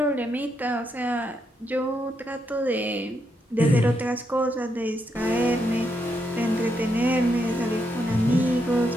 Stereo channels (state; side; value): normal; both; correlation 0.80